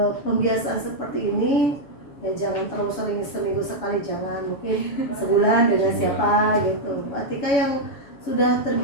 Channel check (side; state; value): right; late; 7.1 ms